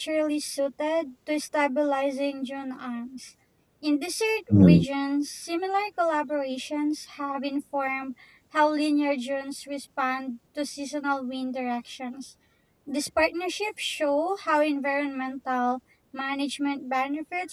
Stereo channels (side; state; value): both; identical; correlation 1.00